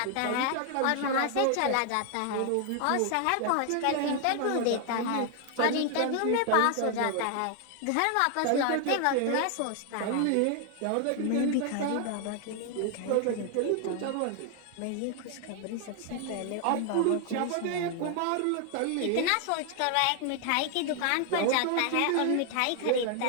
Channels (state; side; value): different; both; correlation 0.00